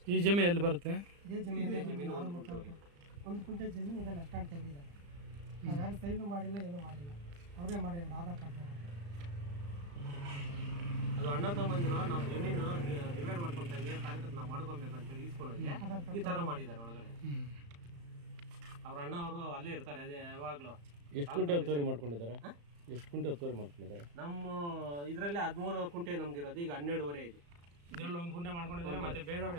ಈ ಜಮೀನು ಎಲ್ಲಿ ಬರುತ್ತೆ? ಇದೇ ಜಮೀನು 1 ಕುಂಟೆ ಜಮೀನು ಇದೆಲ್ಲ ಅಷ್ಟಾಗಿ ತೆಗೆದಿದ್ದಾರೆ. ನಾವು ಯಾರು ಸೈನು ಮಾಡಿಲ್ಲ, ಏನೂ ಮಾಡಿಲ್ಲ, ಅವರೇ ಮಾಡಿಲ್ಲ. ಆಧಾರ್ ಕಾರ್ಡ್ ಅದು ಅಣ್ಣ ತಮ್ಮಂದಿರು ನಾವು ಜಮೀನು ಡಿವೈಡ್ ಮಾಡ್ಕೊತಾ ಇದ್ದೀವಿ, ಕಾರ್ಯಕ್ರಮ ನಾವು ಮಾಡ್ಕೊಬೇಕು ಅಂತೇಳಿ ಈಸ್ಕೊಳ್ಳೋದು ಈ ಥರ ಮಾಡಿದ್ದಾರೆ ಒಳಗಡೆ. ಅವ್ರ ಅಣ್ಣ ಅವರು ಅಲ್ಲೇ ಇರ್ತಾರೆ, ಅದೇ ಯಾವಾಗಲೂ. ಎಷ್ಟು ಗುಂಟೆ ಒತ್ತುವರಿ ಮಾಡ್ಕೊಂಡಿದ್ದಾರೆ? ಎಷ್ಟು ಗುಂಟೆ ಒತ್ತುವರಿ ಮಾಡ್ಕೊಂಡಿದ್ದಾರೆ? ನಮ್ಮ ಇದರಲ್ಲಿ 13 ಕುಂಟೆ ನಮ್ದಿರೋದು, ಈಗ 12.5 ಇದೆ. ಇದರಲ್ಲಿ 1 ಗುಂಟೆ ಮಾಡ್ಕೊಂಡಿದ್ದಾರೆ, ಮತ್ತೆ ಬೇರೆಯವ್ರ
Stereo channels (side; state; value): left; late; 35 ms